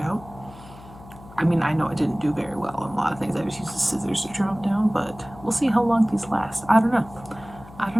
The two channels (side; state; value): left; noise; hum, 19 dB below the sound